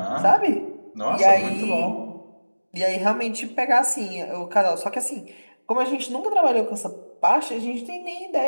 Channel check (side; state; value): both; inverted; correlation -1.00